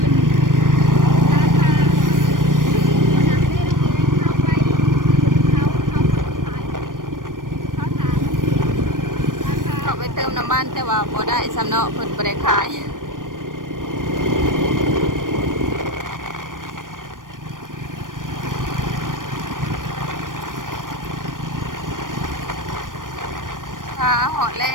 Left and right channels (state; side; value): late; left; 0.90 ms